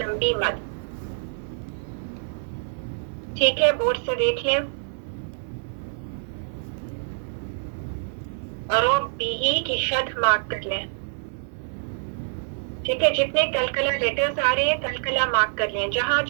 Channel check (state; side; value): silent; left; 56 dB below the other